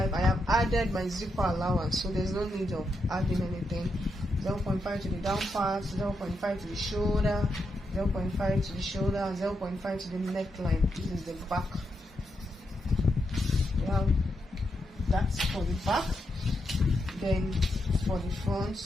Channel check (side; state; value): both; normal; correlation 0.83